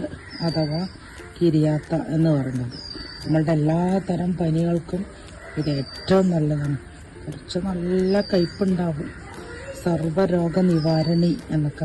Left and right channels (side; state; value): both; identical; correlation 1.00